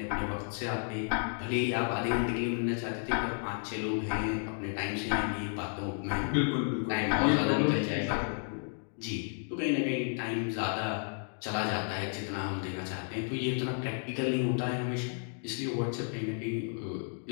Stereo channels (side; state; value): right; silent; 56 dB below the other